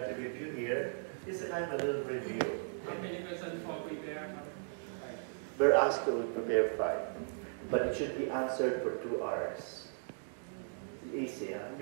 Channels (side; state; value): left; silent; digital silence